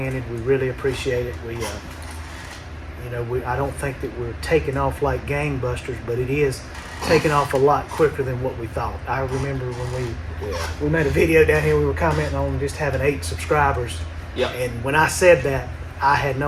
We really appreciate it. I don't think that we're taking off like gangbusters, but it is taking off a lot quicker than what we thought. I remember when we made a video down here, we were commenting on just having 8 subscribers. Yep. And when I said that, I had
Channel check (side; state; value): both; identical; correlation 1.00